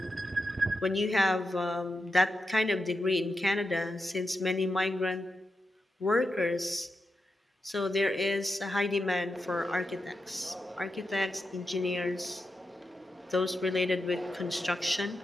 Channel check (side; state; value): both; normal; correlation 0.88